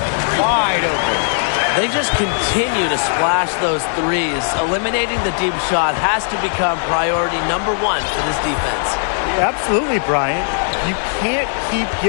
wide open. They just continue to splash those 3s. Eliminating the deep shot has to become priority number 1 for this defense. Yeah, absolutely, Brian. You can't keep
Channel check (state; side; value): silent; right; digital silence